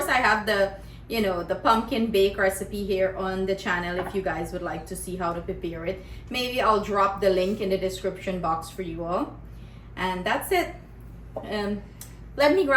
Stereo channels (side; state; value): both; identical; correlation 1.00